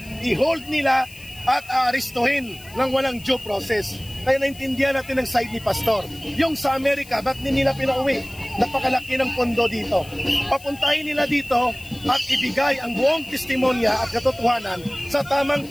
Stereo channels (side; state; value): left; noise; hiss, 21 dB below the sound